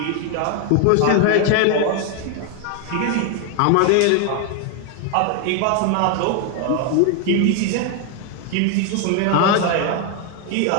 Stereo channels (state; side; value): different; both; correlation 0.01